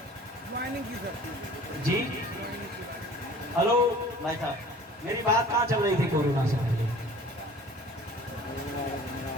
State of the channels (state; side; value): normal; both; correlation 0.47